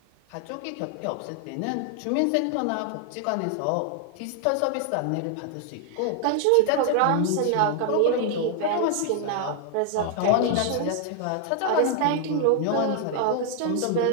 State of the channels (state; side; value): different; both; correlation 0.00